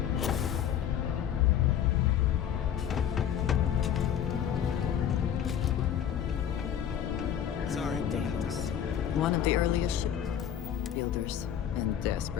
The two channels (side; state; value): right; quieter; 9.5 dB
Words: Sorry, Deimos. One of the earliest ship builders, and